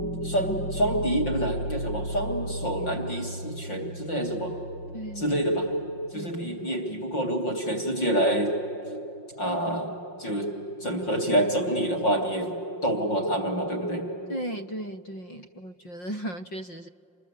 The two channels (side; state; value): right; late; 5.6 ms